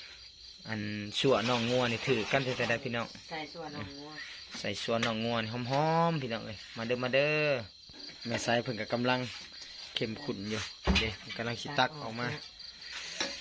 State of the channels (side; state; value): both; identical; correlation 1.00